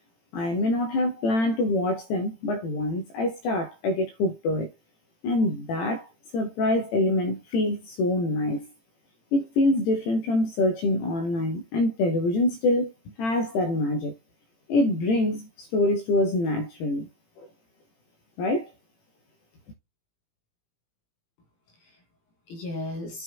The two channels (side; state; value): right; late; 18 ms